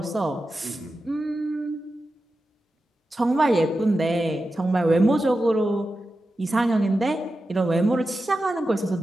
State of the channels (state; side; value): normal; both; correlation 0.91